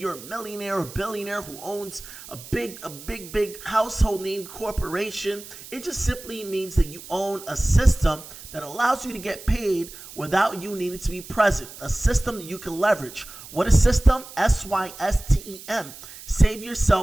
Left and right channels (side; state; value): right; noise; hiss, 16 dB below the sound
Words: a millionaire or billionaire who owns a big household name corporation. It just simply means that you own a system that allows you to get paid without you needing to be present. A system that you can leverage. What is system? SYSTEM. Save